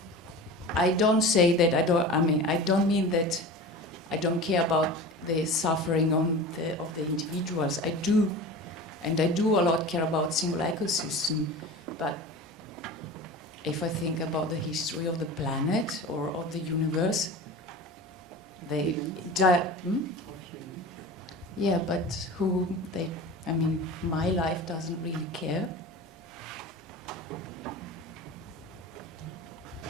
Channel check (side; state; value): both; normal; correlation 0.34